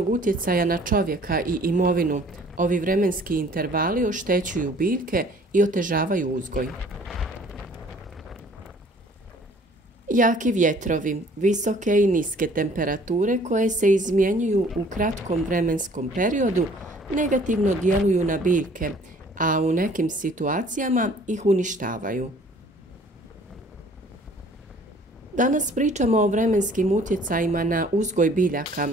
utjecaja na čovjeka i imovinu, ovi vremenski intervali oštećuju biljke i otežavaju uzgoj. Jaki vjetrovi, visoke i niske temperature koje se izmjenjuju u kratkom vremenskom periodu negativno djeluju na biljke, a u nekim situacijama ih uništavaju. Danas pričamo o vremenskim utjecajima na uzgoj biljaka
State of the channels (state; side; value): normal; both; correlation 0.55